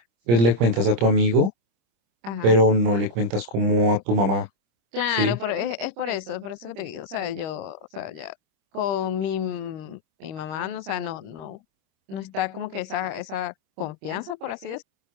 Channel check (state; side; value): late; left; 26 ms